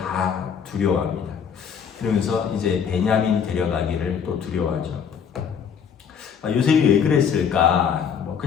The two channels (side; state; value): right; quieter; 7.3 dB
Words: 두려워합니다. 그러면서 이제 베냐민 데려가기를 또 두려워하죠. 요셉이 왜 그랬을까? 뭐